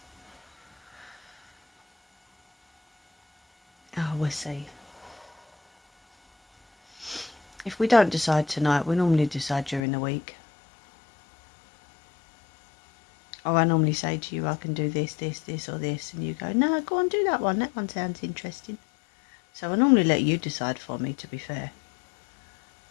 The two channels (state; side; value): drops out; right; at 9.8 s